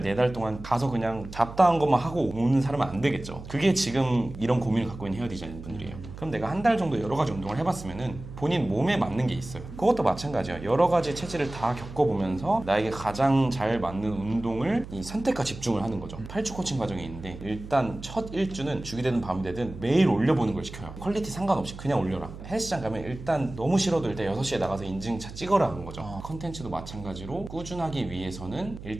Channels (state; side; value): noise; right; hum, 13 dB below the sound